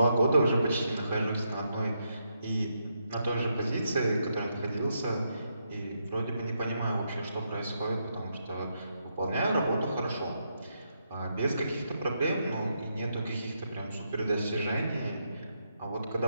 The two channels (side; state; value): both; inverted; correlation -0.80